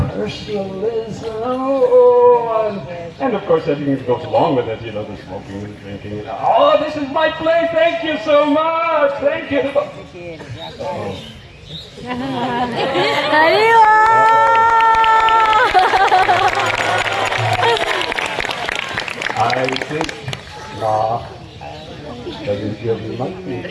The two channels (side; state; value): both; identical; correlation 1.00